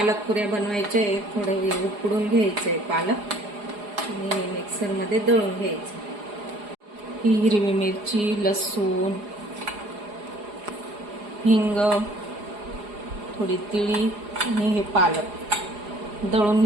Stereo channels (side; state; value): left; late; 4.8 ms